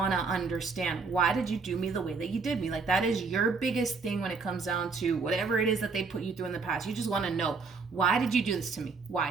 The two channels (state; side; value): quieter; left; 4.6 dB